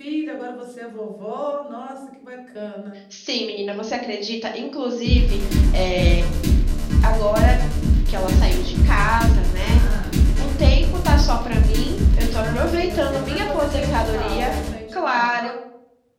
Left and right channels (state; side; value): identical; both; correlation 1.00